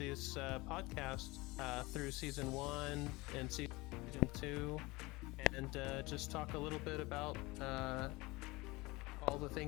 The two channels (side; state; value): right; quieter; 22.7 dB